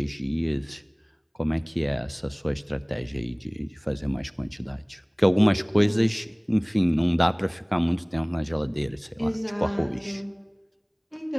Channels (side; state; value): both; identical; correlation 1.00